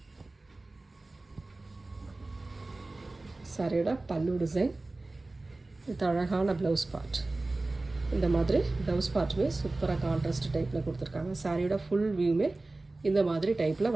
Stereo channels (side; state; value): left; quieter; 3.1 dB